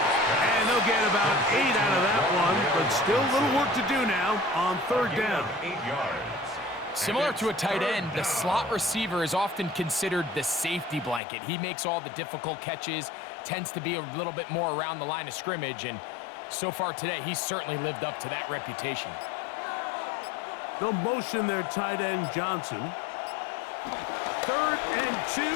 And they'll get about 8 out of that one, but still a little work to do now on 3rd down. 8 yards. Similar to a tight end, the slot receiver is often considered the safety blanket. He makes all the difficult catches, tends to be a little bit more around the line of scrimmage, and so far today, he's certainly lived up to that reputation. They'll motion their tight end, Johnson. 3rd and 2,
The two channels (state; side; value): drops out; right; at 11.2 s